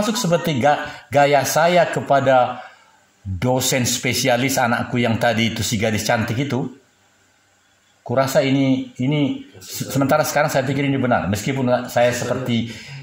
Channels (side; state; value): both; identical; correlation 1.00